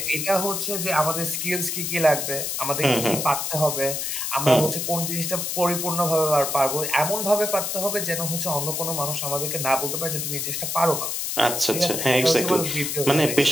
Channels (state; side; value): noise; left; hiss, 2 dB below the sound